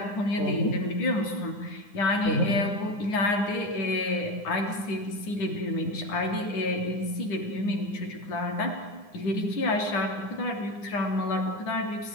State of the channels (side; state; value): right; late; 9.8 ms